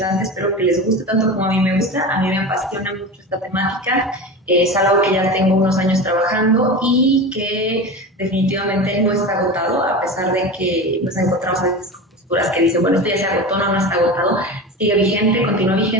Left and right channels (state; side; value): normal; both; correlation 0.28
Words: espero que les guste tanto como a mí me gusta. A mí me apasiona mucho esta temática, es algo que ya tengo unos años trabajando y que definitivamente no está agotado, a pesar de que nos encontramos a veces con posturas que dicen, bueno, esto ya se agotó, no está agotado, sigue vigente, continúa